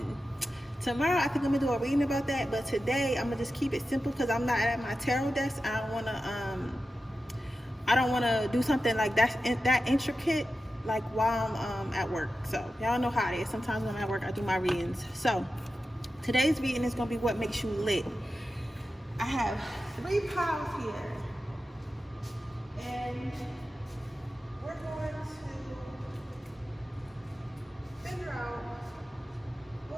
Tomorrow I think I'm gonna do a reading about that, but today I'm gonna just keep it simple because I'm not at my tarot desk. I don't wanna do something like that intricate like while I'm at work. So y'all know how it is. Sometimes when I'm at work I do my readings. So today's reading is gonna be what makes you lit. I have 3 piles here. And we're going to figure out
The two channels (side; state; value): both; normal; correlation 0.92